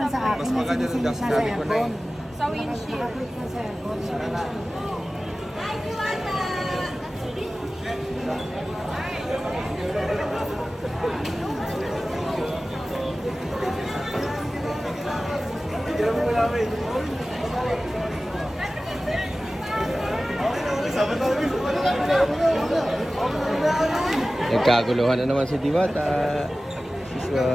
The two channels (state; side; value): normal; both; correlation 0.96